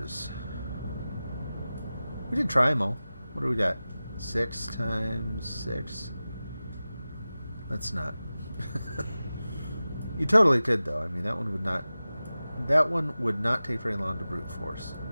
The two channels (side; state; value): both; inverted; correlation -0.96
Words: We did try them all. What do we got? 6 times 6. Let's not. You totally could, though. I mean, that one would not that one would not take very long to brute force.